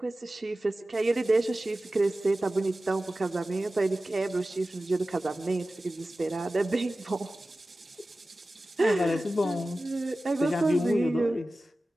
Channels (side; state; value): both; normal; correlation 0.96